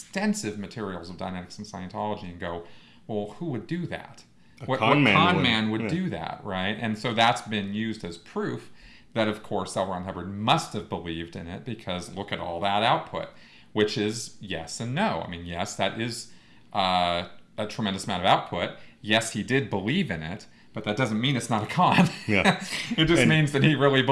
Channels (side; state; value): both; identical; correlation 1.00